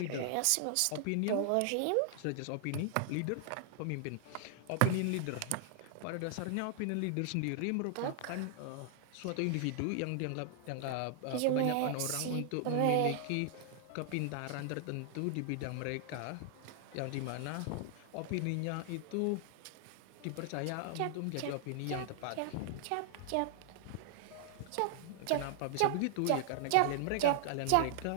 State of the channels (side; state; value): both; different; correlation 0.00